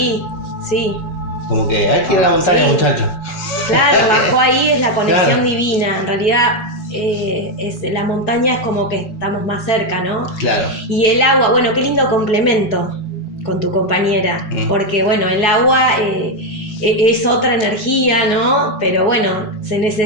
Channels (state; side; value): late; right; 4.8 ms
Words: Sí, Como que hay que ir a la montaña, Sí. muchachos. claro, bajo ahí es la conexión Claro. divina. En realidad, la montaña es como que estamos más cerca, ¿no? Claro. Y el agua, bueno, qué lindo complemento con tu compañera, porque bueno, el agua es otra energía, ¿no? Pero bueno, se